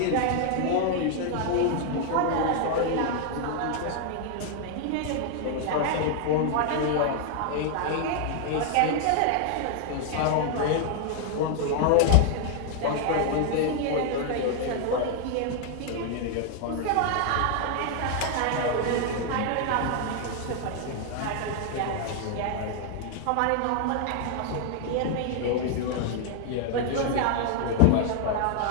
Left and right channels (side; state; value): both; different; correlation 0.00